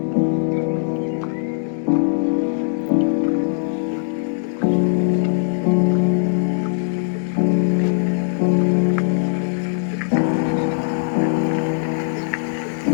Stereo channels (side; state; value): right; silent; digital silence